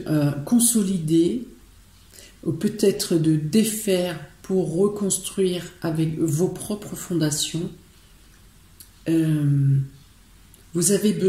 consolider, ou peut-être de défaire pour reconstruire avec vos propres fondations. Vous avez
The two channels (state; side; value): identical; both; correlation 1.00